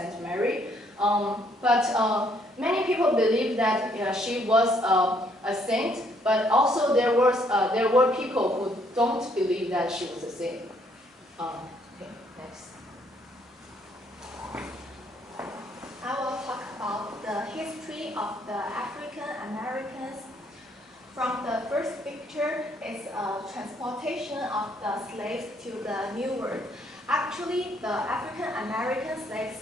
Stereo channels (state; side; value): normal; both; correlation 0.68